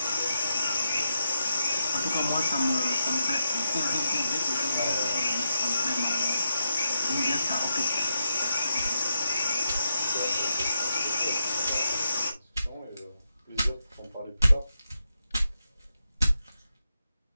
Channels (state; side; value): inverted; both; correlation -0.84